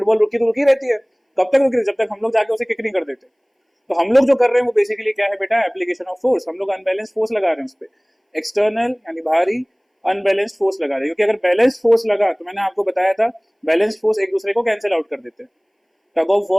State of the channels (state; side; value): identical; both; correlation 1.00